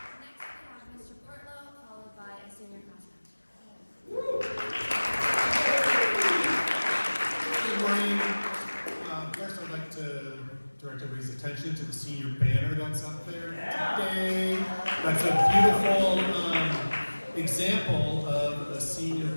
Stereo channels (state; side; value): inverted; both; correlation -1.00